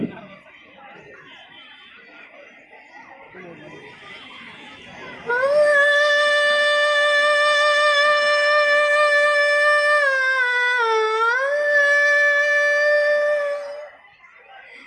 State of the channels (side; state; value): both; identical; correlation 1.00